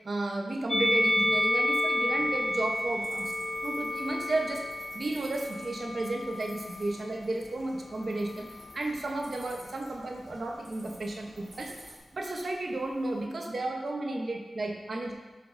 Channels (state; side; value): normal; both; correlation 0.93